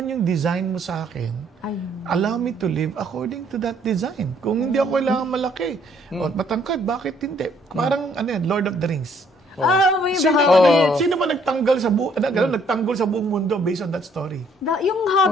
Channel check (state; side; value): normal; both; correlation 0.65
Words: yung design mo sa akin, allow me to live according to that design. Kung hindi ako kailangan malaki o matangkad, bakit hindi? Parang, Lord of the Rings. Sino ba nagtanggal sa nagtanggol sa buong mundo based on that story? Yung